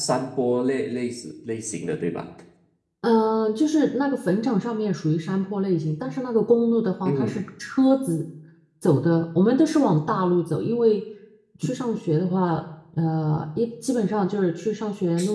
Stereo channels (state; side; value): identical; both; correlation 1.00